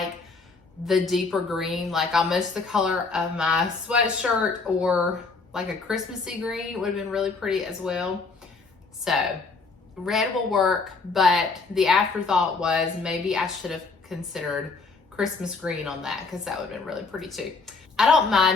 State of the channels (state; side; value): quieter; right; 4.2 dB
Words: the deeper green, like almost the color of my sweatshirt, or like a Christmassy green would have been really pretty as well. So red will work, but the afterthought was maybe I should have considered Christmas green on that, because that would have been really pretty too. I don't